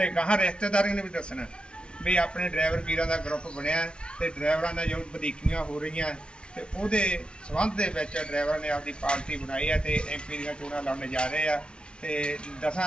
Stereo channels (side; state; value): right; late; 0.057 ms